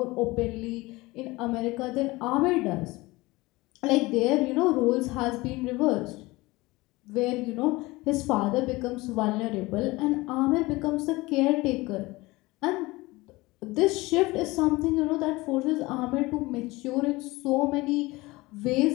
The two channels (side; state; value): right; quieter; 21.4 dB